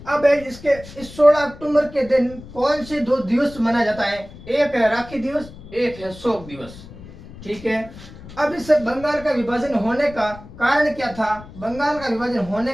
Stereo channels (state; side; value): noise; left; rumble, 17 dB below the sound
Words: अब इसके इस 16 अक्टूबर के दिन कौन से 2 दिवस मनाया जाता है? एक है राखी दिवस, एक है शोक दिवस। ठीक है। अब इस बंगाल का विभाजन होने का कारण क्या था? बंगाल का विभाजन होने